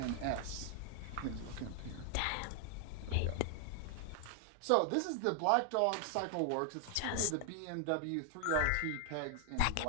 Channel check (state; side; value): different; both; correlation 0.00